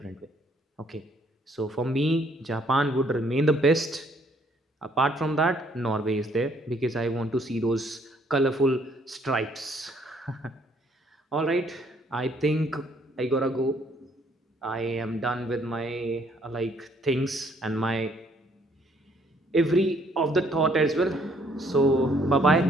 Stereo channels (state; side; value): normal; both; correlation 0.65